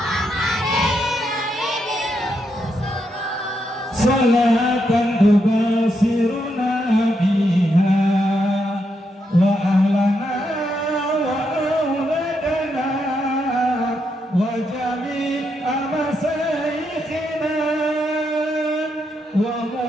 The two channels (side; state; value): both; normal; correlation 0.81